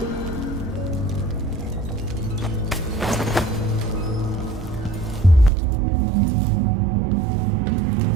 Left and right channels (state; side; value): drops out; left; at 5.5 s